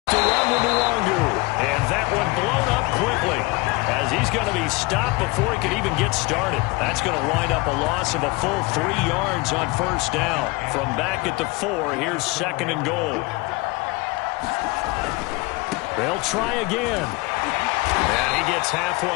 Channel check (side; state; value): right; quieter; 24.2 dB